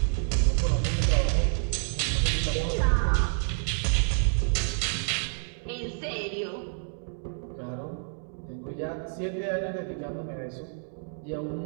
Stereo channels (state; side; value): silent; left; digital silence